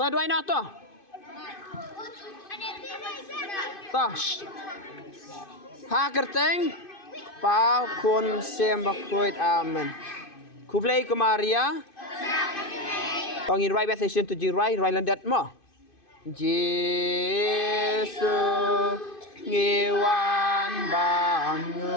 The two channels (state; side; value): late; right; 2.5 ms